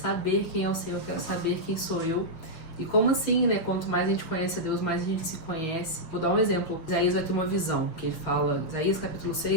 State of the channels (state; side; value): late; right; 6.5 ms